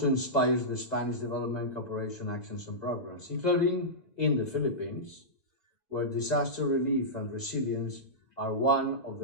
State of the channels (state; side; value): late; right; 1.9 ms